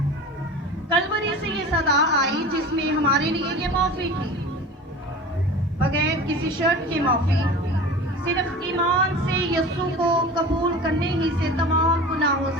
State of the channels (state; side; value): normal; both; correlation 0.36